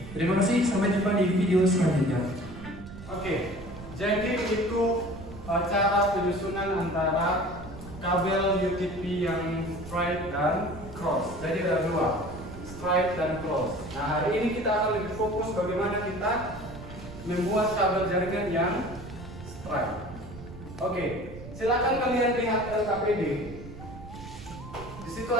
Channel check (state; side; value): noise; right; rumble, 14 dB below the sound